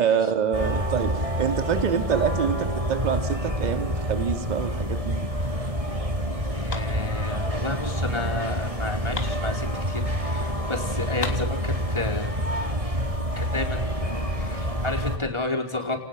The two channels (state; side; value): late; left; 1.6 ms